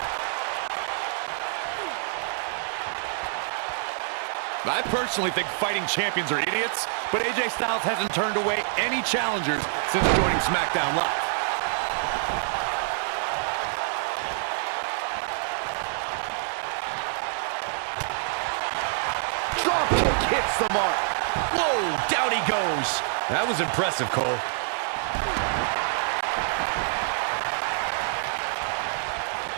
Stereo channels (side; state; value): left; silent; digital silence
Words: I personally think fighting champions are idiots, but AJ Styles hasn't turned away any challengers since joining SmackDown Live. Drop kick hits the mark. Whoa, down he goes. That was impressive, Cole.